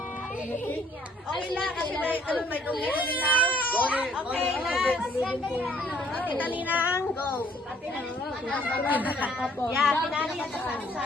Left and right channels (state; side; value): normal; both; correlation 0.62